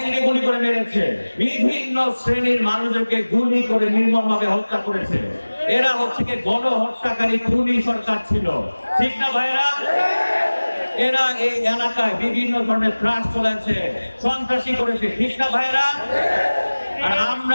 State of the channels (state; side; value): inverted; both; correlation -1.00